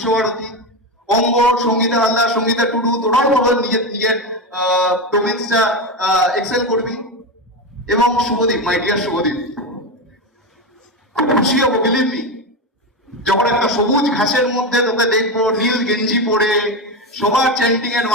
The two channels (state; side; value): normal; both; correlation 0.16